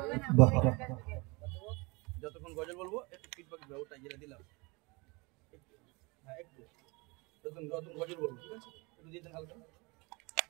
যতক্ষণ গজল বলবো একটু ফিডব্যাক দাও ওটা যেটা দিলাম একটু যতক্ষণ গজল বলবো ঠিক আছে একটু দিতেন হালকা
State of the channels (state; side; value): quieter; left; 27.0 dB